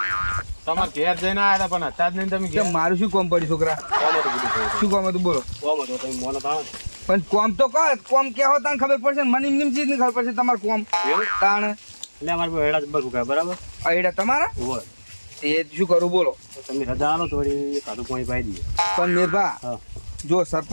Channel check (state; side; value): inverted; both; correlation -1.00